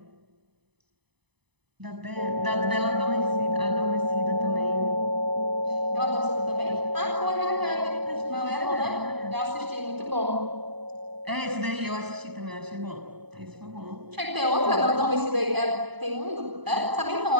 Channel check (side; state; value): left; late; 0.99 ms